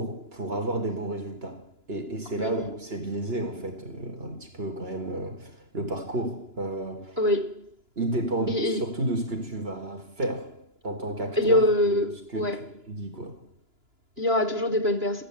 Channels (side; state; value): left; late; 2.9 ms